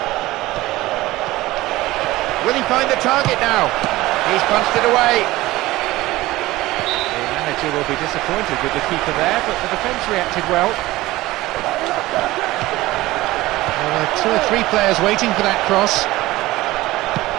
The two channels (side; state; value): left; quieter; 18.1 dB